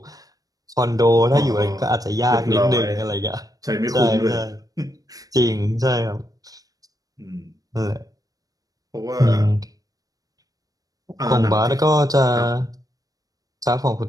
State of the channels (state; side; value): late; left; 0.18 ms